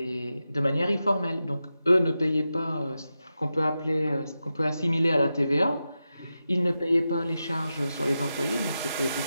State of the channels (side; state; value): both; inverted; correlation -0.90